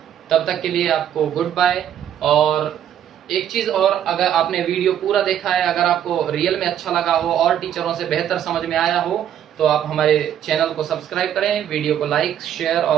तब तक के लिए आपको गुड बाय। और एक चीज और, अगर आपने वीडियो पूरा देखा है, अगर आपको रियल में अच्छा लगा हो और टीचरों से बेहतर समझ में आया हो, तो आप हमारे चैनल को सब्सक्राइब करें, वीडियो को लाइक शेयर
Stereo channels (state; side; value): quieter; left; 10.1 dB